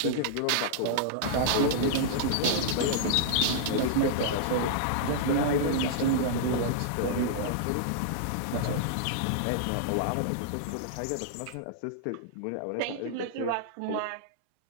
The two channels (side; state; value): both; different; correlation -0.01